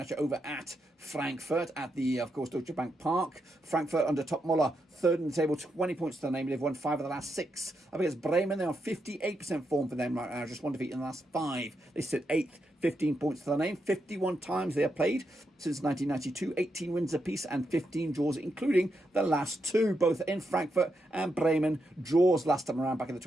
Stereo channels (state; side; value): normal; both; correlation 0.83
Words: at you over at Frankfurt at the, of course, Deutsche Bank Park. Frankfurt under Topmöller, 3rd in the table, 20 points to their name. They've won 5 of the last 6. Up against Bremen, they're on 58% form for them right now. Just 1 defeat in the last 5. They sit 8th, 15 points to their name. 51 times they have played since 1992. 18 wins apiece and 15 draws, including the last 2, both in Frankfurt and Bremen. Draws last time around back in the